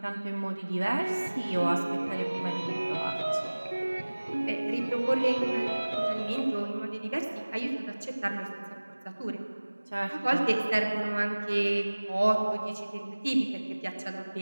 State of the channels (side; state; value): both; inverted; correlation -1.00